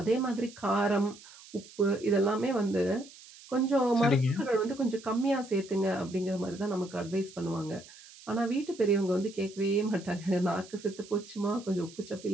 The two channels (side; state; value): right; noise; hiss, 20 dB below the sound